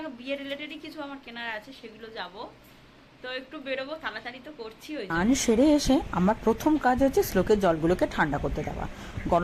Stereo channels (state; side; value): identical; both; correlation 1.00